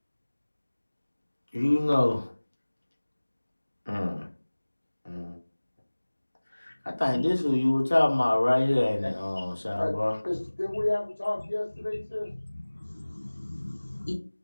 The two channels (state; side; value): inverted; both; correlation -1.00